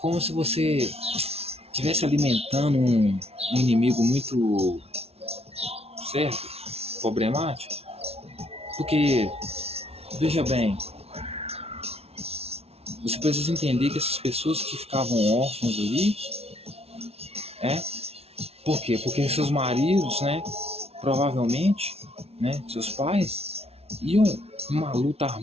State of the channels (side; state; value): left; late; 0.30 ms